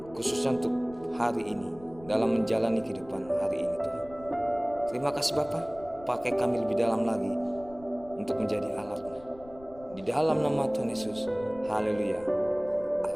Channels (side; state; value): left; noise; rumble, 21 dB below the sound